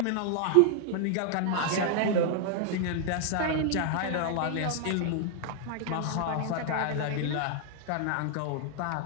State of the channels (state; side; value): different; both; correlation 0.00